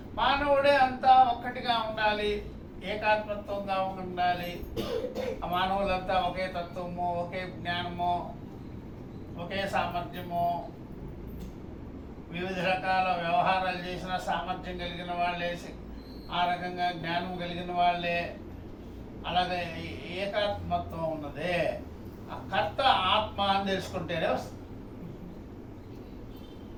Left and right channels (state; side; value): identical; both; correlation 1.00